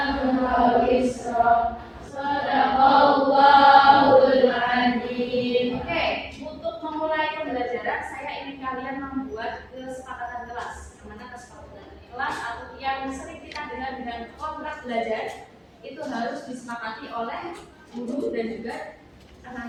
wizrak. Shadaqallahul adzim. Oke, untuk memulai pembelajaran saya ingin kalian membuat kesepakatan kelas. Yang mana kesepakatan kelas atau yang sering kita dengar dengan kontrak belajar itu harus disepakati oleh guru dan juga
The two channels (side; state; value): both; identical; correlation 1.00